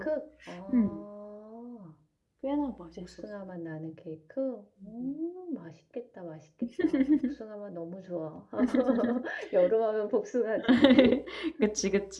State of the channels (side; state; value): both; identical; correlation 1.00